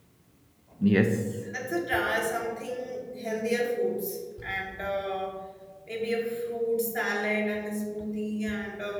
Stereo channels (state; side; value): identical; both; correlation 1.00